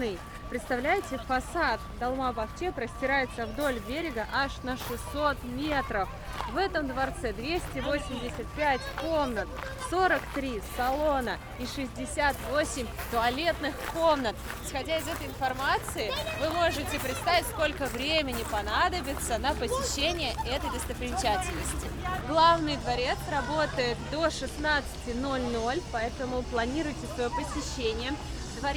Представляете, фасад Долмабахче простирается вдоль берега аж на 600 метров. В этом дворце 285 комнат, 43 салона и 68 туалетных комнат. Исходя из этой информации, вы можете представить, сколько времени понадобится на посещение этой достопримечательности. Главный дворец работает до 16:00, поэтому планируйте свое посещение.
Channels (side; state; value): both; identical; correlation 1.00